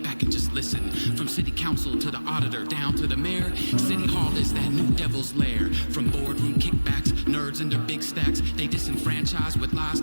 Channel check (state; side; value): inverted; both; correlation -1.00